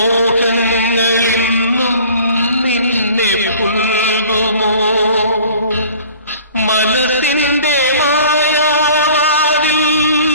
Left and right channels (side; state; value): both; inverted; correlation -0.48